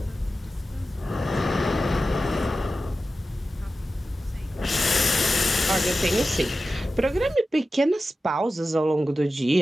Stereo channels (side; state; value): both; normal; correlation 0.93